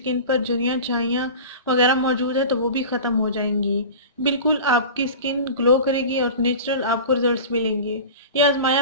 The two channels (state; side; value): inverted; both; correlation -0.34